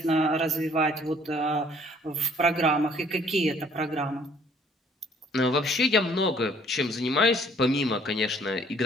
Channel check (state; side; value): normal; both; correlation 0.59